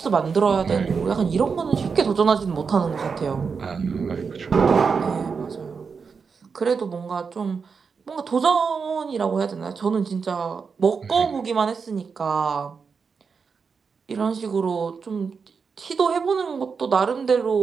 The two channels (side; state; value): left; quieter; 5.5 dB